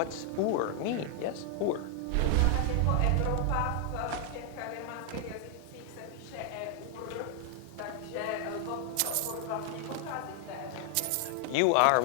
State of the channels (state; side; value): different; both; correlation 0.00